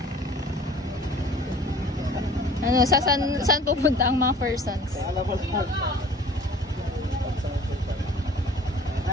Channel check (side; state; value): both; normal; correlation 0.48